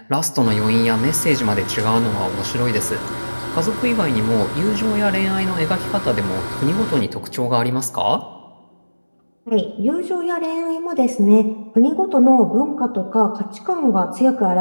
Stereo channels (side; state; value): both; inverted; correlation -1.00